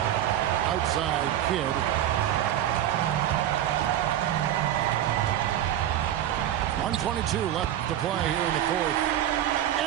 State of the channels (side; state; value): left; quieter; 11.6 dB